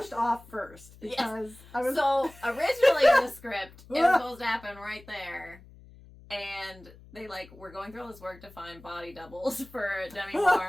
off first, because I was... So, originally in the script, it was supposed to happen right there. And they we're going through all this work to find body doubles for Demi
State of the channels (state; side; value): noise; left; hum, 22 dB below the sound